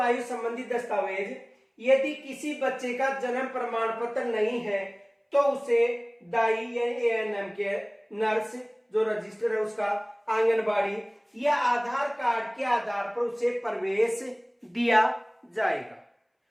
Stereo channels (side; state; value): both; identical; correlation 1.00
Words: संबंधी दस्तावेज, यदि किसी बच्चे का जन्म प्रमाण पत्र नहीं है तो उसे दाई यानी एएनएम के नर्स जो रजिस्टर है उसका, आंगनबाड़ी या आधार कार्ड के आधार पर उसे प्रवेश दिया जाएगा।